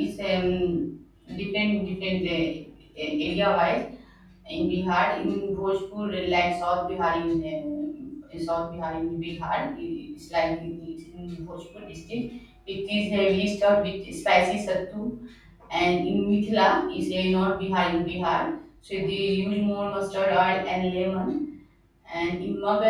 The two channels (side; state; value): both; identical; correlation 1.00